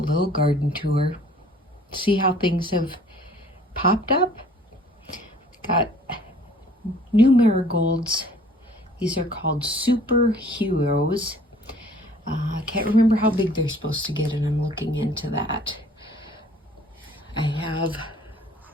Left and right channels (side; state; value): both; normal; correlation 0.54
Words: garden tour. See how things have popped up. Got new marigolds. These are called Superheroes. I can't remember how big they're supposed to get, and I'm looking into that. I have